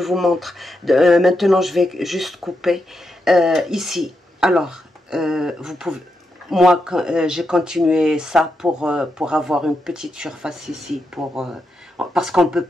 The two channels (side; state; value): both; normal; correlation 0.85